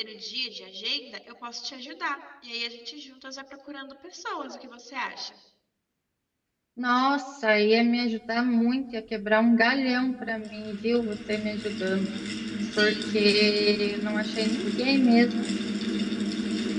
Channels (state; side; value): identical; both; correlation 1.00